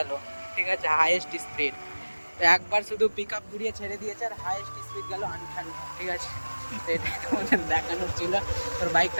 ঠিক আছে, হাইয়েস্ট স্পিড। তো একবার শুধু পিক আপ ঘুরিয়ে ছেড়ে দিয়েছে আর হাইয়েস্ট স্পিড গেল 58, ঠিক আছে। তো এটাই তোমাদের দেখানোর ছিল। তোর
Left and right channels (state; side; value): inverted; both; correlation -1.00